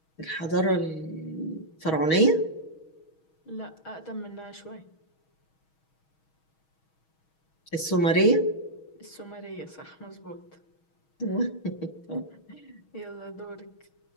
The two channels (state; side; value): late; right; 6.3 ms